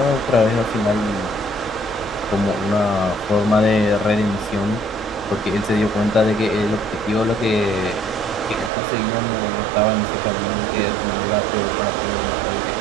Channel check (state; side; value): drops out; left; at 8.7 s